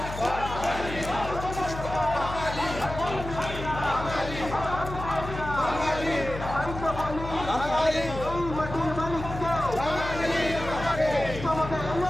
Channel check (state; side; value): noise; left; hum, 9 dB below the sound